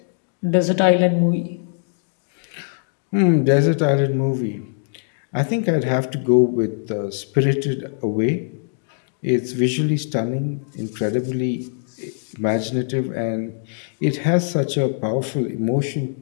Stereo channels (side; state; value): right; silent; digital silence